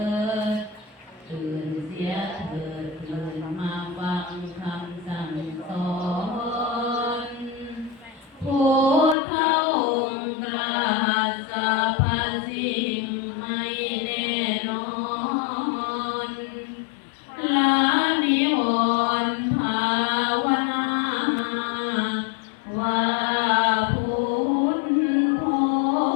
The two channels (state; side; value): drops out; right; at 9.2 s